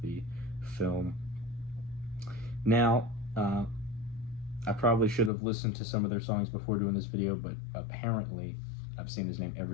the film. Now, I probably should have listened to some of their songs before doing this video, but apparently I've seen his name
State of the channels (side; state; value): right; drops out; at 5.3 s